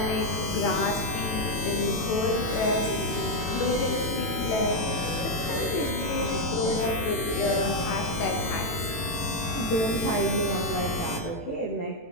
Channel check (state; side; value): late; right; 18 ms